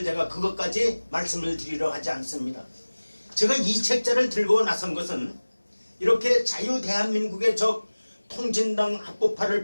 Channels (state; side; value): inverted; both; correlation -1.00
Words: 제가 그것까지 말씀을 드리려 하지 않습니다. 제가 이 책자를 들고 나선 것은 이렇게 자유대한민국의 적 통진당 합법화를